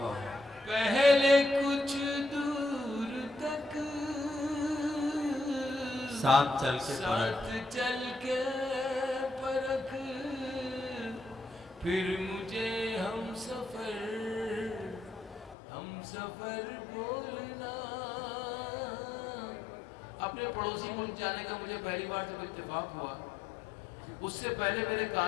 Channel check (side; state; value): right; drops out; at 15.6 s